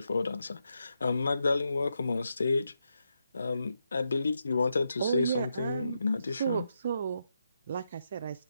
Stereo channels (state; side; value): inverted; both; correlation -0.84